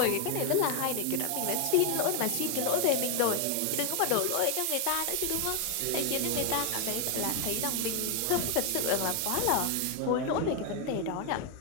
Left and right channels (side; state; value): both; different; correlation 0.00